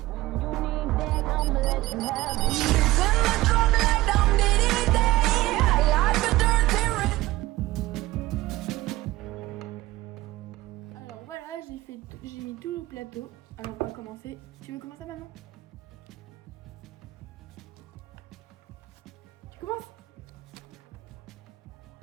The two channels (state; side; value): quieter; left; 18.0 dB